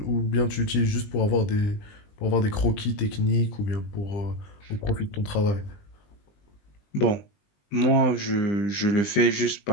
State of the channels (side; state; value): right; late; 20 ms